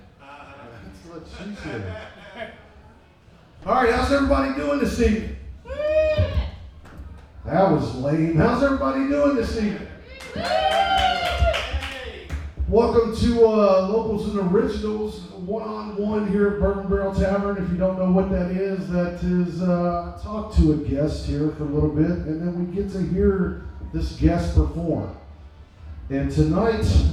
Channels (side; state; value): both; identical; correlation 1.00